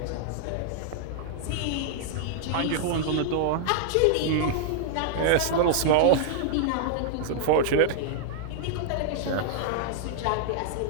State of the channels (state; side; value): different; both; correlation -0.01